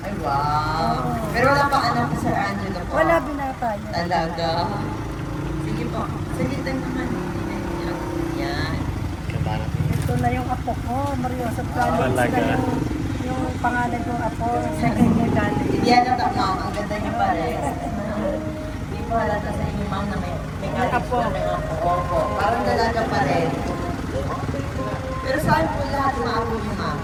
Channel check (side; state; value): both; identical; correlation 1.00